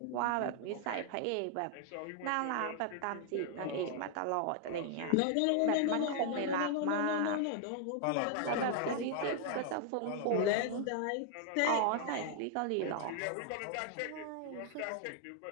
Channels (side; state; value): both; different; correlation 0.00